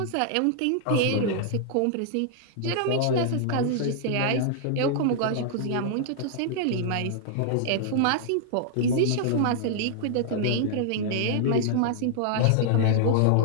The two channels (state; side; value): different; both; correlation -0.01